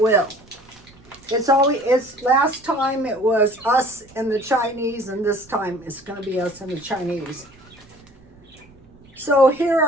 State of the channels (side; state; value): right; noise; rumble, 26 dB below the sound